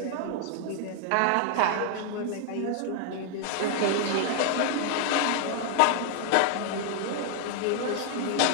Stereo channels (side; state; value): both; different; correlation 0.00